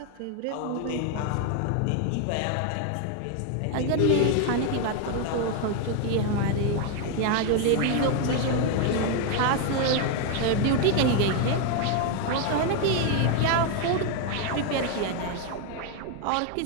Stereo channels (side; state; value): both; different; correlation 0.01